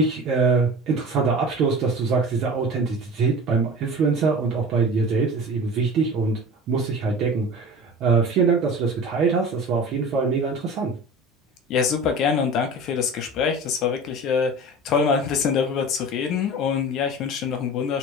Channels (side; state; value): both; normal; correlation 0.36